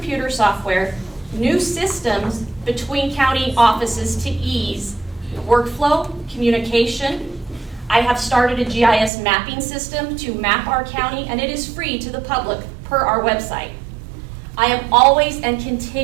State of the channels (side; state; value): left; drops out; at 9.1 s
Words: software, new systems between county offices to ease workflow, communication. I have started a GIS mapping system to map our county, and it is free to the public per our website. I am always and